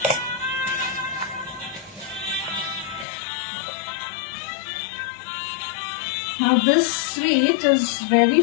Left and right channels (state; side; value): drops out; right; at 3.1 s